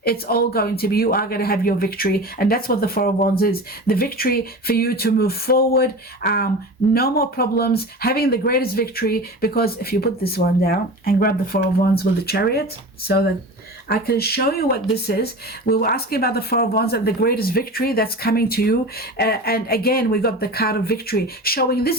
It's all going to be, you are going to have your victory. And that's what the Four of Wands is. The victory for you to move forward. No more problems. Having the greatest victory. Because if you put this one down and grab the Four of Wands with the Chariot, so that I can show you what this is. We were asking about the Four of Wands and the greatest victory that's coming to you. And again, we got the card of victory, showing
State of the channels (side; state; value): both; normal; correlation 0.32